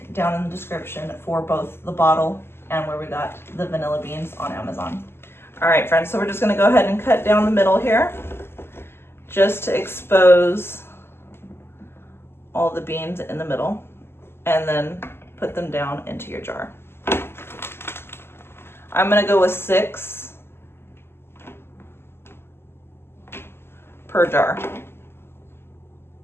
down in the description for both the bottle and where we got the vanilla beans on Amazon. All right, friends, so we're just gonna go ahead and cut down the middle here just to expose all the beans in the middle and then put them down into your jar. I'm gonna go with 6 per jar.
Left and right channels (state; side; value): late; right; 0.12 ms